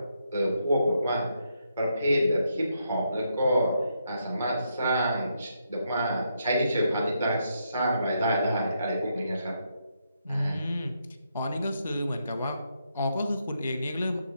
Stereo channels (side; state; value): both; inverted; correlation -0.79